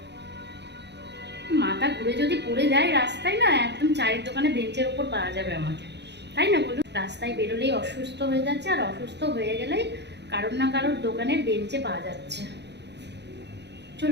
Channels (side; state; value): left; late; 0.50 ms